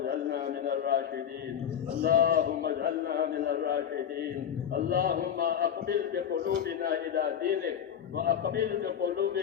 من الراشدين، اللهم اجعلنا من الراشدين. اللهم أقبل بقلوبنا إلى دينك، وأقبل بقلوب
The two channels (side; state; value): right; quieter; 8.8 dB